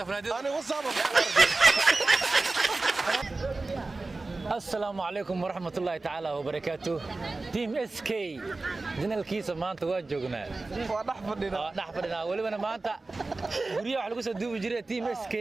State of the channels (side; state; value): left; quieter; 3.4 dB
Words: أنا وصابك السلام عليكم ورحمة الله تعالى وبركاته. تيم اس كي جنالكيسا maanta waa joognaa waa dhaxfadhina waliba maanta guriga waxa lagu soo duubi jiray Team SK